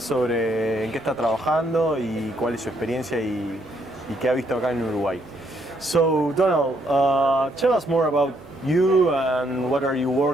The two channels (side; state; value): both; normal; correlation 0.72